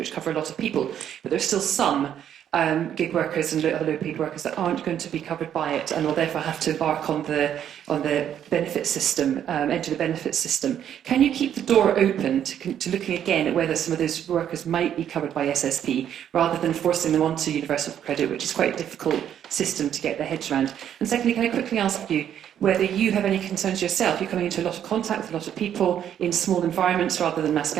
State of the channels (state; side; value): quieter; left; 9.8 dB